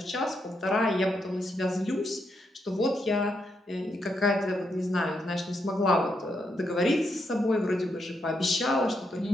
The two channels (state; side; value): normal; both; correlation 0.80